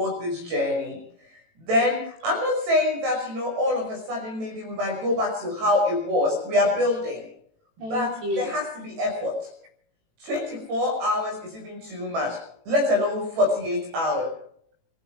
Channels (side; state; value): left; late; 18 ms